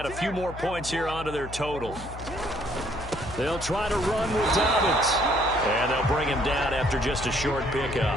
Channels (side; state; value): left; noise; hum, 12 dB below the sound